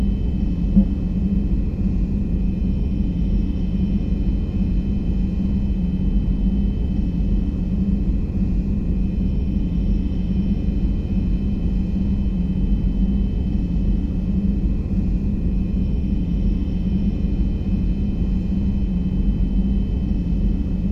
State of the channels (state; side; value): identical; both; correlation 1.00